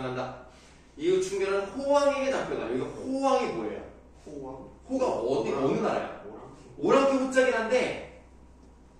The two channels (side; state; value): both; identical; correlation 1.00